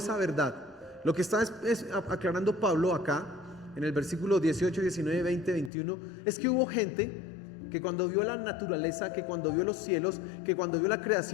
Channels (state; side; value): drops out; right; at 5.7 s